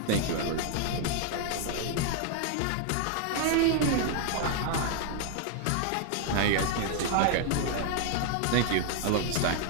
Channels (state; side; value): different; both; correlation 0.00